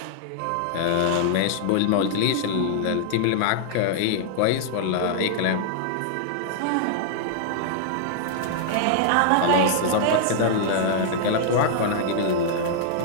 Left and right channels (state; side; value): different; both; correlation -0.01